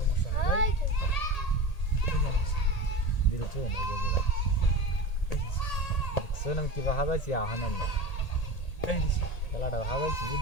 নাই এই যে দিছি দিলছো এই যে দিলাম এই দিছি দেখছো না কিবা হাজাইছি আহানাম এই দিছি খেলাটা হাজাইছি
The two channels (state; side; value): late; right; 1.8 ms